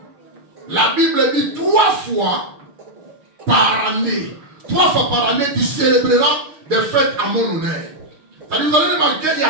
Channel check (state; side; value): late; left; 6.5 ms